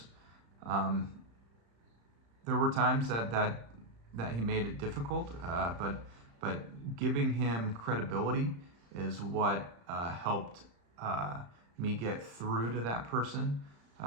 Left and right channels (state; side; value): late; left; 35 ms